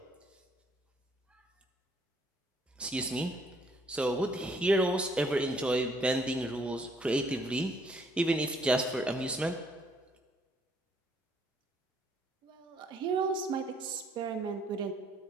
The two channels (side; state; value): both; normal; correlation 0.66